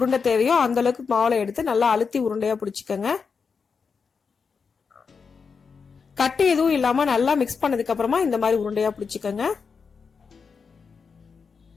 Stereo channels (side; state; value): right; quieter; 5.5 dB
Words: தேவையோ அந்த அளவுக்கு மாவுல எடுத்து நல்லா அழுத்தி உருண்டையா பிடிச்சிக்கங்க. கட்டி எதுவும் இல்லாம நல்லா மிக்ஸ் பண்ணதுக்கு அப்புறமா இந்த மாதிரி உருண்டையா பிடிச்சிக்கங்க.